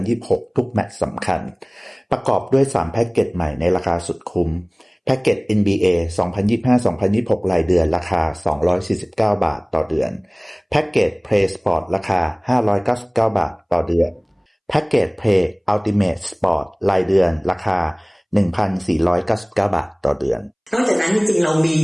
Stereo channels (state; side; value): identical; both; correlation 1.00